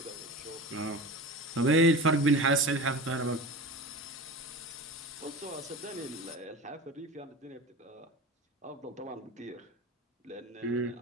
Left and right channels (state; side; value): normal; both; correlation 0.32